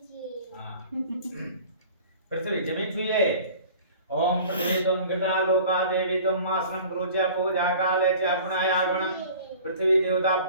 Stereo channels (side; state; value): both; inverted; correlation -0.45